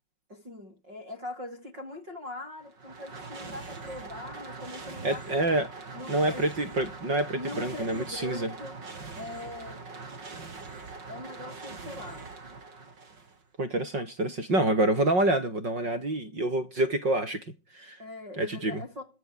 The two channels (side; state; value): left; late; 5.5 ms